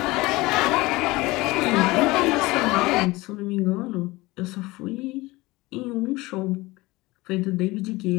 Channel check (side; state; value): right; quieter; 21.0 dB